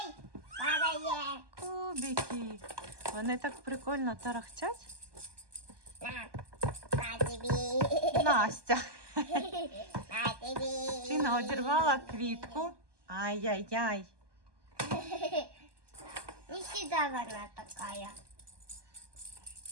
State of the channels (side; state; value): left; late; 1.2 ms